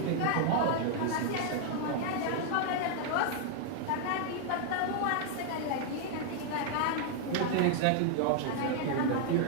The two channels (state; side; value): different; both; correlation 0.00